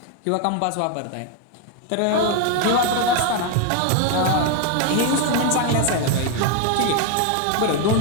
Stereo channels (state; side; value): different; both; correlation 0.01